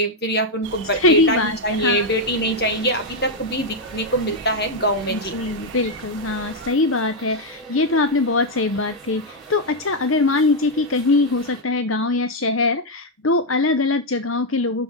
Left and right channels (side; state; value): both; normal; correlation 0.02